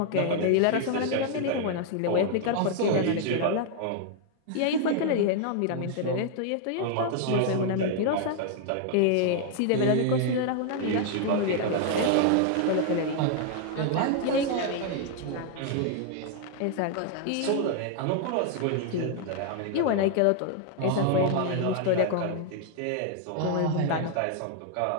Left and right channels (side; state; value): both; different; correlation 0.00